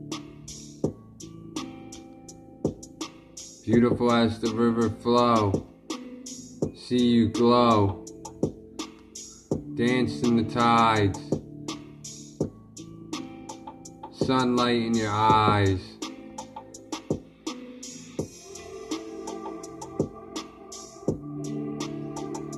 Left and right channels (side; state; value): both; identical; correlation 1.00